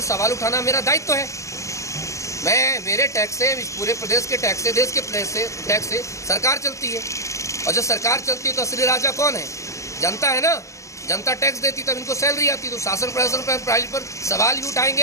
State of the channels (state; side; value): late; right; 0.15 ms